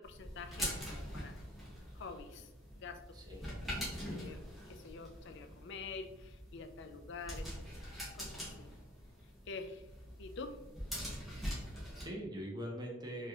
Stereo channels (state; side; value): normal; both; correlation 0.51